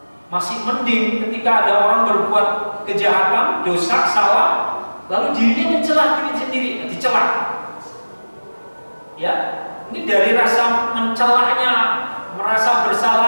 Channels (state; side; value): inverted; both; correlation -1.00